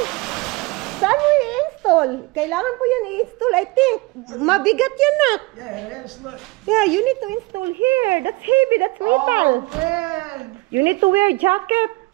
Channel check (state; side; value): quieter; left; 24.1 dB